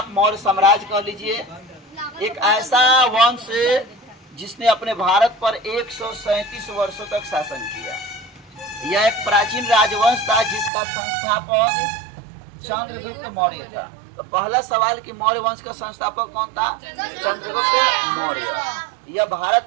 मौर्य साम्राज्य कह लीजिए, एक ऐसा वंश जिसने अपने भारत पर 137 वर्षों तक शासन किया। यह एक प्राचीन राजवंश था जिसका संस्थापक चंद्रगुप्त मौर्य था। तो पहला सवाल कि मौर्य वंश का संस्थापक कौन था? चंद्रगुप्त मौर्य। यह भारत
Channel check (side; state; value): left; drops out; at 10.7 s